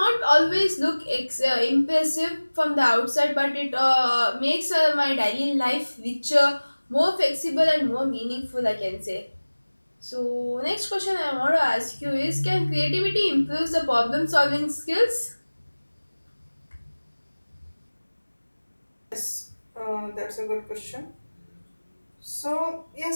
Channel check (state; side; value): inverted; both; correlation -1.00